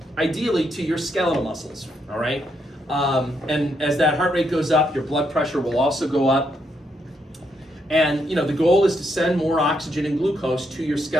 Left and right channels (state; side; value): normal; both; correlation 0.77